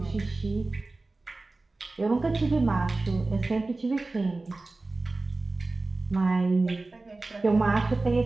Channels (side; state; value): left; quieter; 3.3 dB